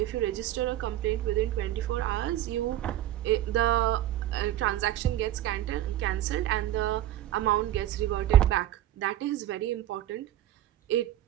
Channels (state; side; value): quieter; left; 13.0 dB